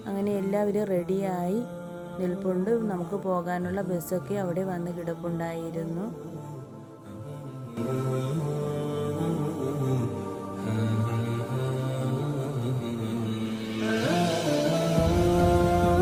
അങ്ങനെ എല്ലാവരും റെഡിയായി നിൽപ്പുണ്ട്. നമുക്ക് പോകാനുള്ള ബസ്സൊക്കെ അവിടെ വന്ന് കിടപ്പുണ്ടായിരുന്നു.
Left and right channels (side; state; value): both; identical; correlation 1.00